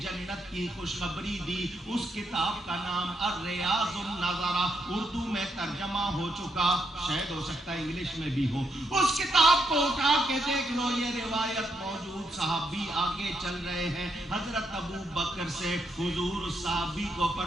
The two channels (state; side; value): normal; both; correlation 0.79